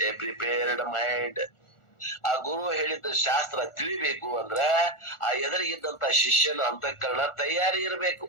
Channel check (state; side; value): late; right; 1.4 ms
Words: a prepared mind. ಆ ಗುರು ಹೇಳಿದ ಶಾಸ್ತ್ರ ತಿಳಿಬೇಕು ಅಂದ್ರ ಆ ಎದುರಿಗಿದ್ದಂತ ಶಿಷ್ಯನ ಅಂತಃಕರಣ ತಯಾರಿ ಇರಬೇಕು,